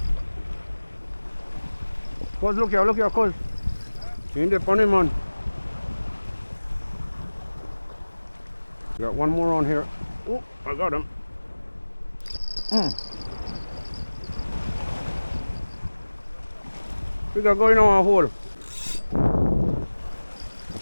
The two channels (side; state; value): both; inverted; correlation -1.00